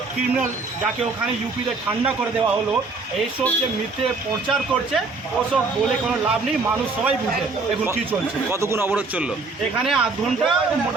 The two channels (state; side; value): quieter; left; 3.9 dB